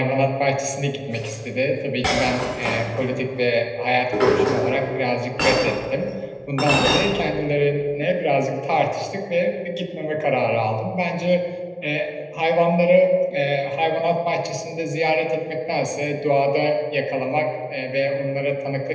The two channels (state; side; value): identical; both; correlation 1.00